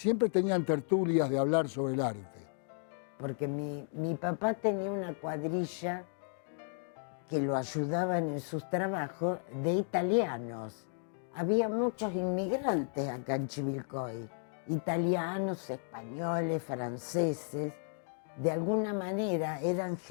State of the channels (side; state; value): right; silent; digital silence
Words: tenían tertulias de hablar sobre el arte. Porque mi papá tenía una cuadrilla que lo ayudaban en sus trabajos de italianos. Había muchos inmigrantes acá en Chivilcoy, italianos, españoles, franceses. De alguna manera eran